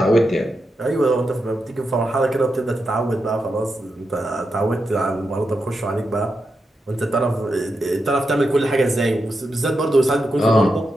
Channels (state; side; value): normal; both; correlation 0.87